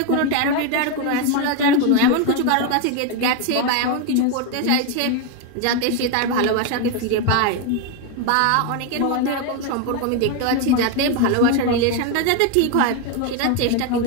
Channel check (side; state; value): both; different; correlation 0.01